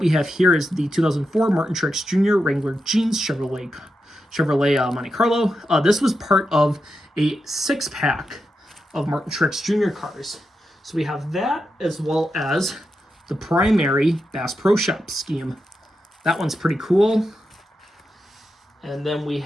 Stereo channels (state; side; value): normal; both; correlation 0.87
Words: have here is the 2004 Martin Truex Jr. Wrangler Jeans Chevrolet Monte Carlo. This was part of a 6-pack of Martin Truex Jr. cars. So we have that as well as the primary Bass Pro Shop scheme. That one's pretty cool. And then we